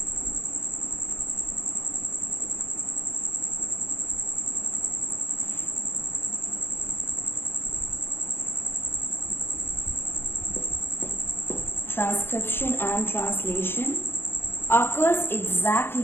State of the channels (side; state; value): right; late; 0.11 ms